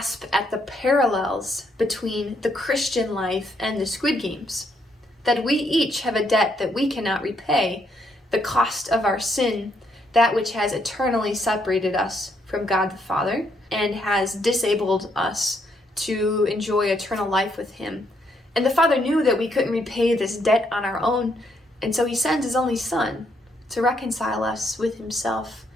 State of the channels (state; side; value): normal; both; correlation 0.74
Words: at the parallels between the Christian life and the Squid Games. That we each have a debt that we cannot repay, the cost of our sin, that which has eternally separated us from God the Father and has disabled us to enjoy eternal life with Him. And the Father knew that we couldn't repay this debt on our own, and so He sends His only Son to reconcile us with Himself,